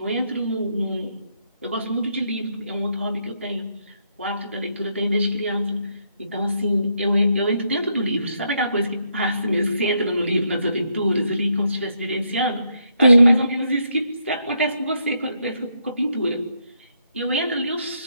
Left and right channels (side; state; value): both; inverted; correlation -0.77